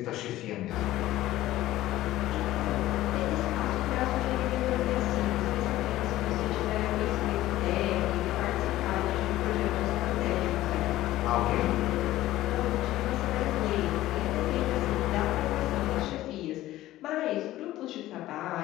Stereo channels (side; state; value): right; quieter; 15.3 dB